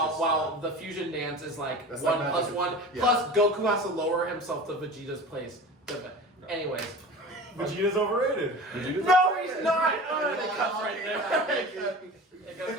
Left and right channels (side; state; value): both; normal; correlation 0.36